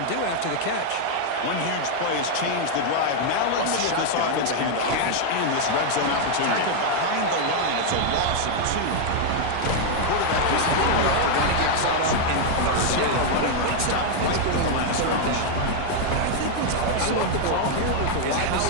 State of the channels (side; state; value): both; different; correlation 0.00